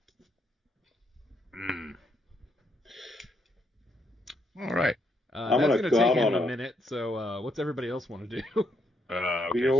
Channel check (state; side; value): normal; both; correlation 0.76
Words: All right. I'm That's gonna gonna go take out him on a a- minute. So, what's everybody else want to do? Okay,